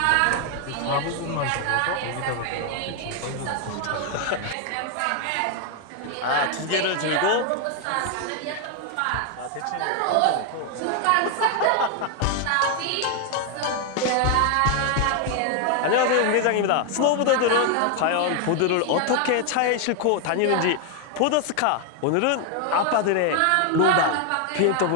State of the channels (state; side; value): different; both; correlation 0.01